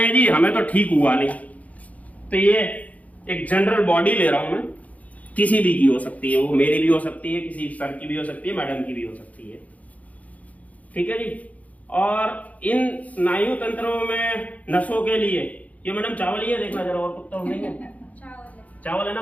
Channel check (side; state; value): right; late; 0.071 ms